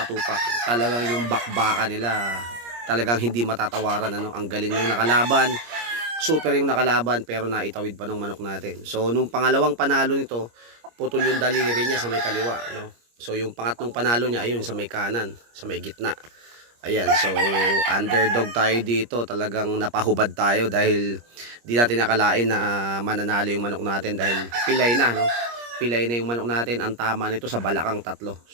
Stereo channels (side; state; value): left; late; 25 ms